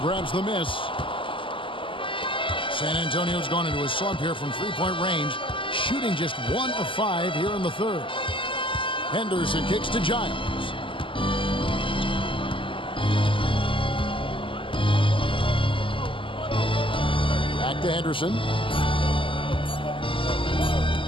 the miss. San Antonio's gone into a slump here from 3-point range, shooting just 1 of 5 here in the third. Henderson kicks to Giles. Back to Henderson.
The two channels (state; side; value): late; right; 0.25 ms